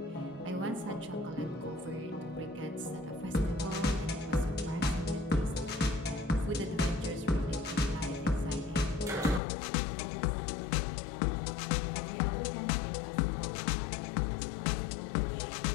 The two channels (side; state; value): right; drops out; at 9.4 s